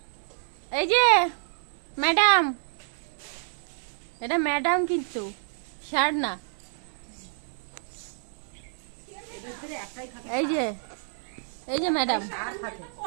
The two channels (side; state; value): left; silent; 59 dB below the other